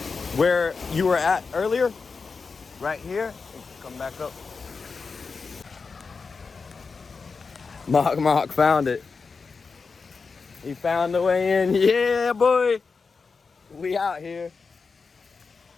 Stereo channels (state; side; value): quieter; right; 4.8 dB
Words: Where you were at earlier, right here, come back up. Mock Mock found it. He found the way in. Yeah, boy. We out here